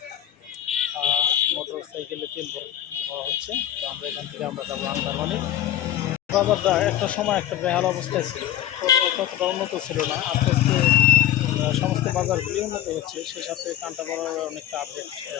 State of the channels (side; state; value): right; quieter; 11.9 dB